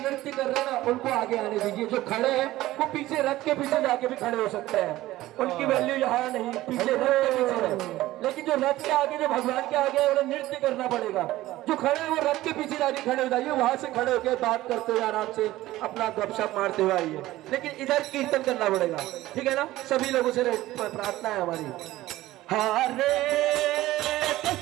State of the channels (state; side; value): quieter; left; 16.4 dB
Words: नृत्य कर रहे हैं ना उनको आगे आने दीजिए। जो खड़े हैं वो पीछे रथ के पीछे जाके भी खड़े हो सकते हैं, उनकी वैल्यू यहाँ नहीं, पीछे रथ के पीछे है। लेकिन जो रथ के आगे, जो भगवान के आगे है, उन्हें नृत्य करना पड़ेगा। जो खड़े हैं वो रथ के पीछे जाके खड़े हो जाइए, वहां से खड़े होकर बात करते हुए आराम से अपना गपशप मारते हुए आइए। लेकिन इधर कीर्तन करना पड़ेगा, ठीक है ना? सभी लोगों से प्रार्थना है हमारी। हरे